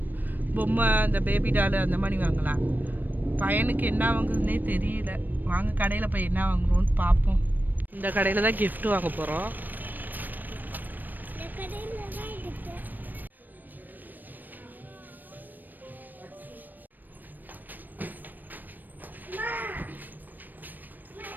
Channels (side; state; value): left; late; 0.089 ms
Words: பொம்மை அந்த பேபி டாலு அந்த மாதிரி வாங்கலாம். பையனுக்கு என்ன வாங்குறதுனே தெரியல. வாங்க கடையில் போய் என்ன வாங்குறோன்னு பார்ப்போம். இந்த கடையில் தான் கிஃப்ட்டு வாங்க போகிறோம்.